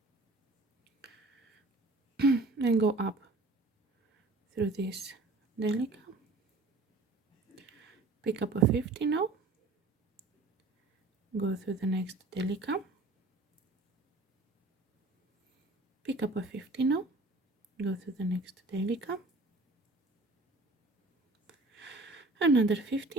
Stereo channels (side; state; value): left; quieter; 3.2 dB